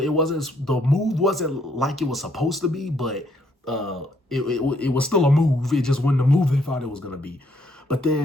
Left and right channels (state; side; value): normal; both; correlation 0.70